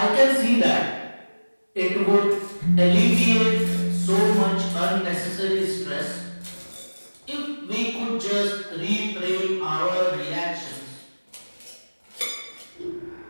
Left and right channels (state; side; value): inverted; both; correlation -1.00